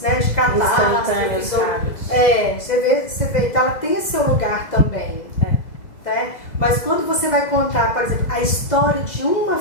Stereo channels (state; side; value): late; right; 2.0 ms